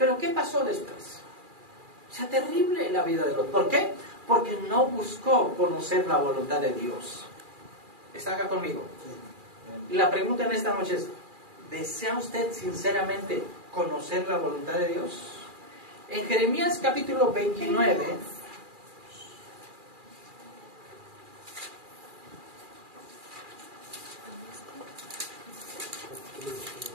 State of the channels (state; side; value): late; left; 2.4 ms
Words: qué pasó después? O sea, terrible la vida de Lot. ¿Por qué? Porque no buscó conocer la voluntad de Dios. ¿Está acá conmigo? Y la pregunta en esta noche es, ¿desea usted sinceramente conocer la voluntad de Dios? En Jeremías capítulo 29,